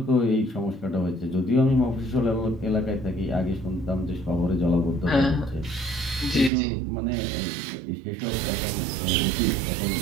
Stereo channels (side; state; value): left; drops out; at 6.5 s